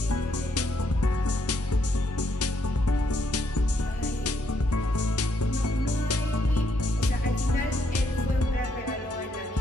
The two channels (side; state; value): both; normal; correlation 0.74